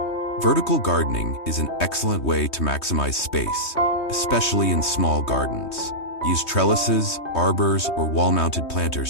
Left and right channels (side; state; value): right; late; 3.2 ms